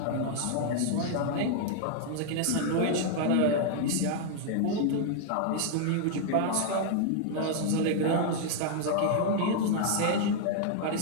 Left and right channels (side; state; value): both; different; correlation 0.00